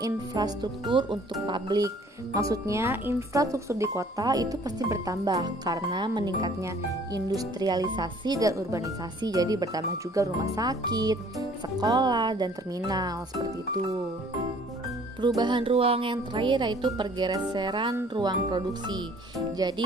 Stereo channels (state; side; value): normal; both; correlation 0.55